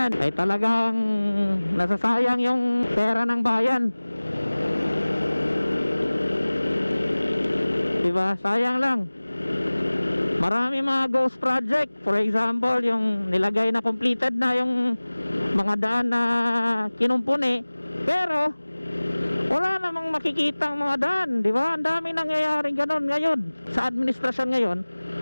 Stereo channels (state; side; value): inverted; both; correlation -1.00